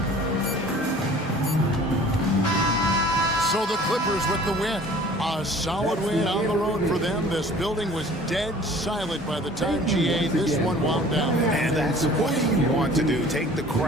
So the Clippers with the win. A solid win on the road for them. This building was dead silent by the time, GA, this one wound down. And that's what you want to do. Take the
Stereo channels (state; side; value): normal; both; correlation 0.48